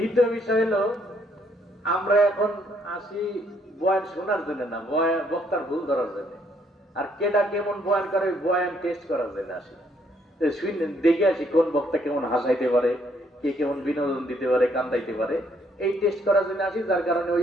বিষয় হলো আমরা এখন আসি বয়ান শোনার জন্য না, বক্তার ভুল ধরার জন্য। আর কেডা কেমন বয়ান করে বয়ান টেস্ট করার জন্য আসি, দেখে আসি কোন বক্তা কেমন হাসাইতে পারে, কে কেমন বিনোদন দিতে পারে, কান্দাইতে পারে, এই টেস্ট করার জন্য আসি। যার কারণে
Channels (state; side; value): normal; both; correlation 0.69